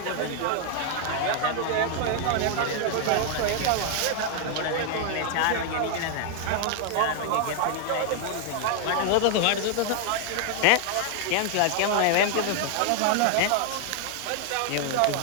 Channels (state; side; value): different; both; correlation 0.00